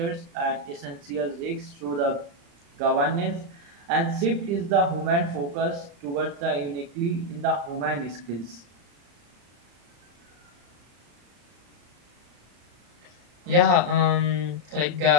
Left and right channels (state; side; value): late; left; 34 ms